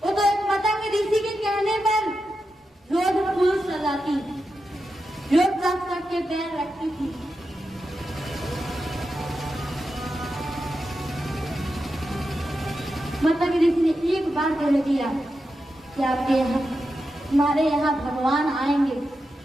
वो तो एक पतंग ऋषि के कहने पर रोज फूल सजाती, रोज रख रख के पैर रखती थी। मतलब ऋषि ने एक बार कह दिया कि आपके यहाँ, हमारे यहाँ भगवान आएंगे,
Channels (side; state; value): both; normal; correlation 0.89